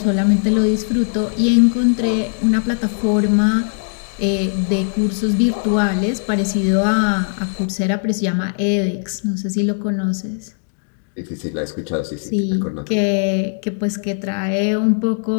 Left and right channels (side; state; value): right; silent; digital silence